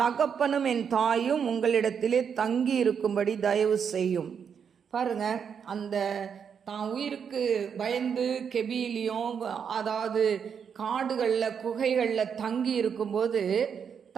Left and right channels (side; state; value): left; quieter; 7.1 dB